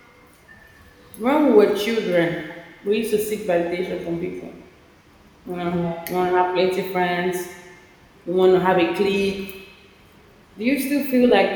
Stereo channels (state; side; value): identical; both; correlation 1.00